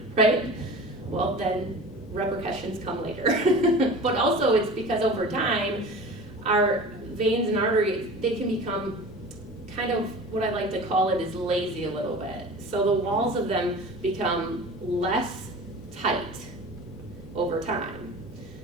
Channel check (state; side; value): normal; both; correlation 0.37